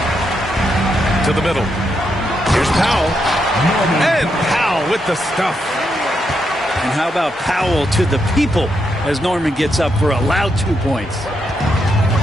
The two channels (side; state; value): both; normal; correlation 0.81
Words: To the middle. Here's Powell. And Powell with the stuff. And how about Powell to the people as Norman gets up for a loud 2 points.